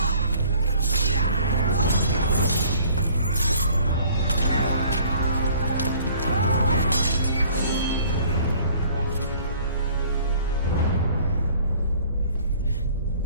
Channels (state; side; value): inverted; both; correlation -0.54